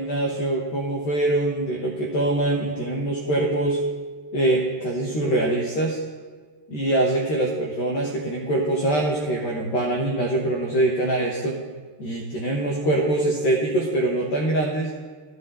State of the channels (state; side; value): late; right; 13 ms